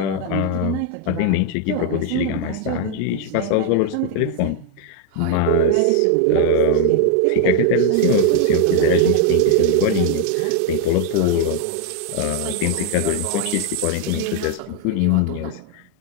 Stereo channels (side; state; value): both; different; correlation 0.01